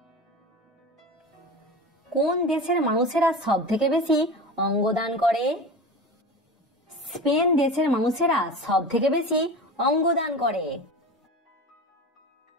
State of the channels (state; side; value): normal; both; correlation 0.30